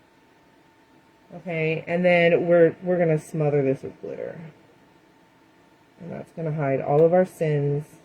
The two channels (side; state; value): both; identical; correlation 1.00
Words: Okay, and then we're going to smother this with glitter. And that's going to hide all of our sins.